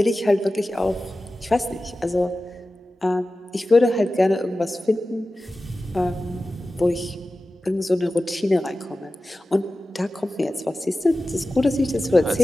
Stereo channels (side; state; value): both; normal; correlation 0.95